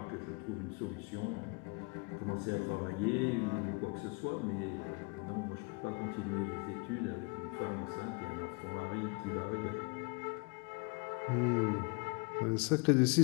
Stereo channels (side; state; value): right; quieter; 31.4 dB